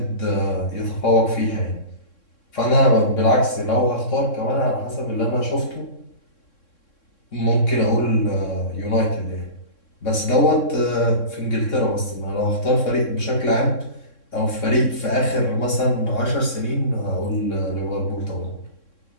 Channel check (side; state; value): right; late; 3.6 ms